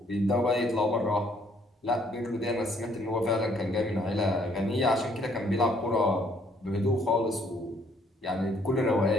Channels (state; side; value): normal; both; correlation 0.66